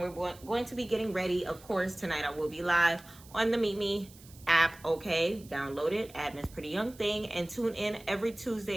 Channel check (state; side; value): noise; right; hiss, 22 dB below the sound